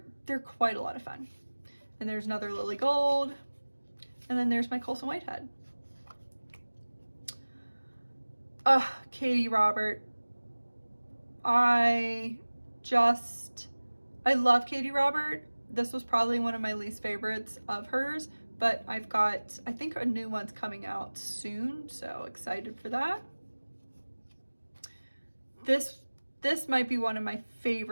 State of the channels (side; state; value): both; inverted; correlation -1.00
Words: quite a lot of fun. And there's another Lily Gold, and then there's my Colson Whitehead. Katie Robert. I I love Katie Robert. This was probably one of my least favorites of hers, but I've got, I think a new one's coming out soon, so excited for that. This might be one of my